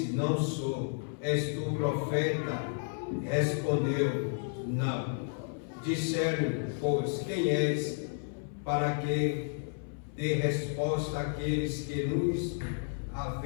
não sou. És tu profeta? Respondeu: não. Disseram: pois quem és? Para que dê resposta àqueles que nos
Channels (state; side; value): silent; right; 56 dB below the other